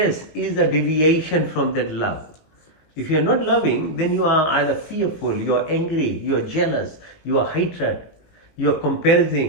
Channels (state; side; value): late; right; 19 ms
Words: is a deviation from that love. If you are not loving, then you are either fearful, you are angry, you are jealous, you are hatred, you are